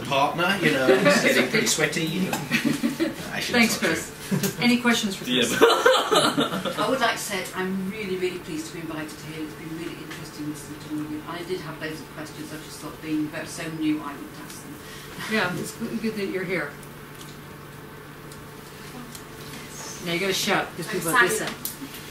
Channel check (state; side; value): identical; both; correlation 1.00